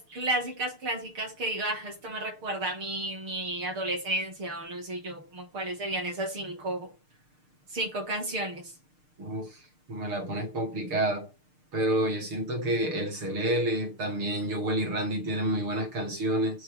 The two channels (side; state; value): left; late; 6.6 ms